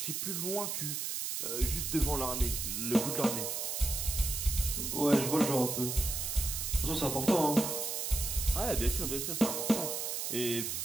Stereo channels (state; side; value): noise; right; hiss, 2 dB below the sound